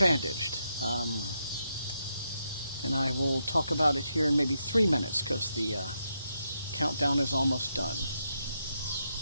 And I will talk about it here in maybe 3 minutes because the countdown is almost done.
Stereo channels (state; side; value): inverted; both; correlation -0.82